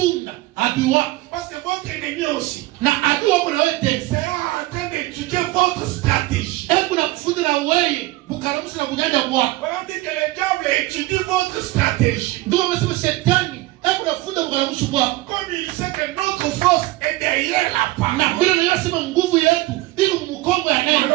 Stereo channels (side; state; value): left; quieter; 19.0 dB